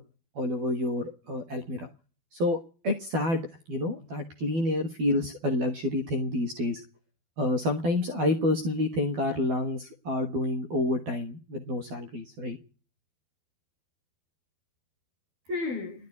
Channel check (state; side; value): late; left; 12 ms